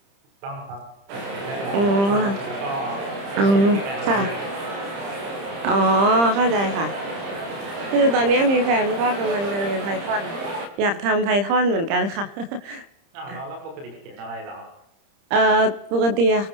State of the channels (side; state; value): left; late; 30 ms